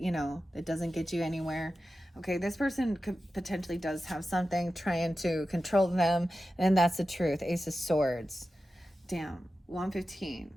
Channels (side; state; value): both; normal; correlation 0.93